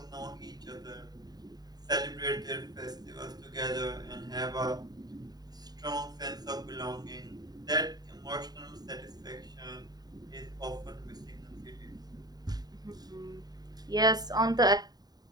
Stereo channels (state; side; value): late; left; 0.19 ms